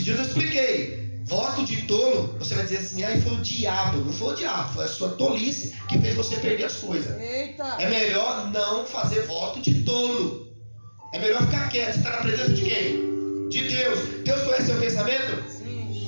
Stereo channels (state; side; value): inverted; both; correlation -1.00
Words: dias eu expliquei. Voto de tolo, você vai dizer assim, foi o diabo. Não foi o diabo, foi a sua tolice que fez você perder as coisas. Eita. É melhor não fazer voto de tolo. É melhor ficar quieto. Você está na presença de quem? De Deus. Deus conhece seu pensamento? Sim.